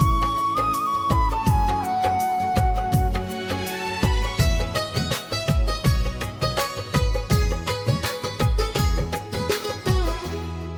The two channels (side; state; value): both; identical; correlation 1.00